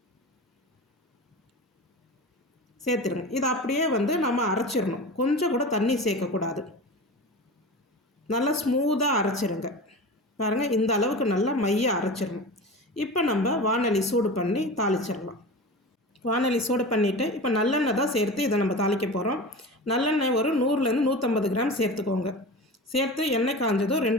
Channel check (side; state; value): both; normal; correlation 0.31